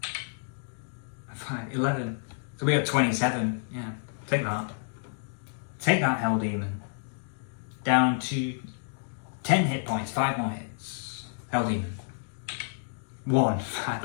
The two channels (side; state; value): right; silent; digital silence